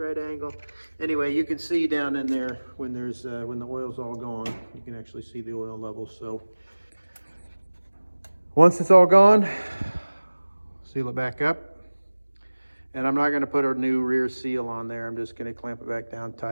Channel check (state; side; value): inverted; both; correlation -1.00